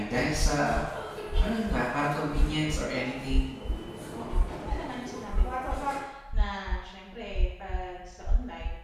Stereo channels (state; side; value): identical; both; correlation 1.00